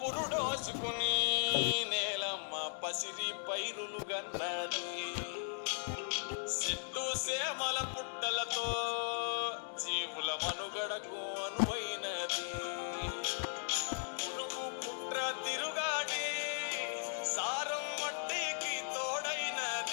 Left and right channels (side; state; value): right; silent; digital silence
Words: నేలమ్మ పసిరి పైరులు గన్నది, సిట్టు సేమల పుట్టలతో జీవుల మనుగడకు అనువైనది. పురుగు పుట్ర తిరుగాడి సారం మట్టికి